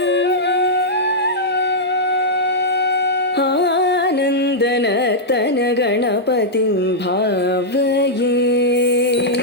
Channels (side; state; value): both; normal; correlation -0.07